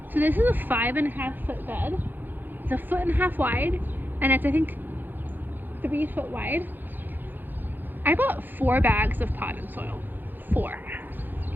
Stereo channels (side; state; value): left; late; 0.090 ms